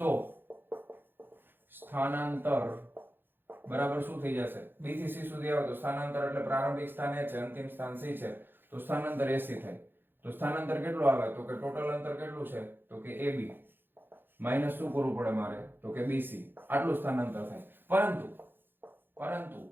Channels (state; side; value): late; left; 0.099 ms